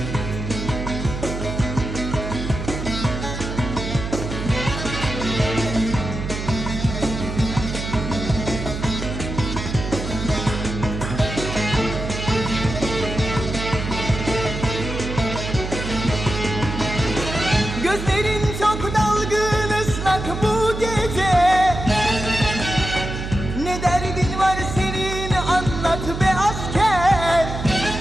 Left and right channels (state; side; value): noise; right; hum, 6 dB below the sound